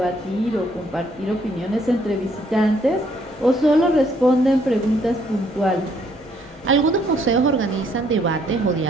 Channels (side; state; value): both; normal; correlation 0.68